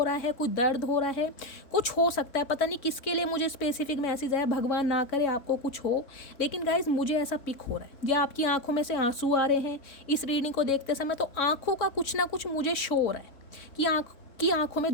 रहा है, कोई दर्द हो रहा है, कुछ हो सकता है, पता नहीं किसके लिए मुझे स्पेसिफिक मैसेज आया, भगवान ना करे आपको कुछ हो, लेकिन गाइस मुझे ऐसा पिक हो रहा है। या आपकी आंखों में से आंसू आ रहे हैं इस रीडिंग को देखते समय, तो आंखों का कुछ ना कुछ मुझे शो हो रहा है कि आंखों में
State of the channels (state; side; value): late; right; 3.6 ms